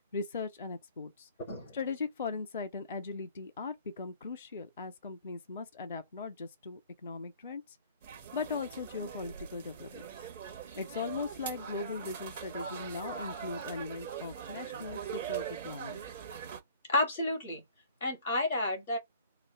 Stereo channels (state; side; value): inverted; both; correlation -0.50